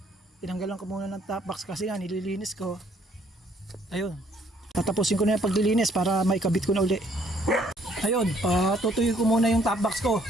Tinanggalan ko muna ng top box kasi nga nililinis ko. Ayun. Tatapusin ko na yung paglilinis para maikabit ko na uli. Ayun, patutuyo ko muna yung top box ko.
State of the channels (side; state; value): both; normal; correlation 0.64